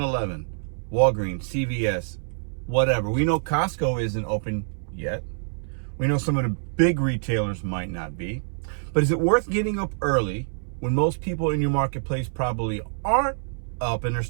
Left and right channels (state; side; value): silent; left; 61 dB below the other